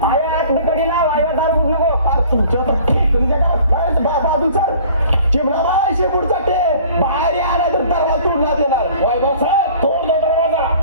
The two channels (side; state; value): both; inverted; correlation -0.50